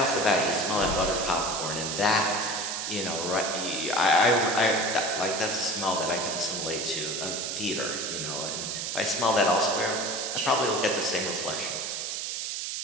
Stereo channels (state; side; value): noise; right; hiss, 3 dB below the sound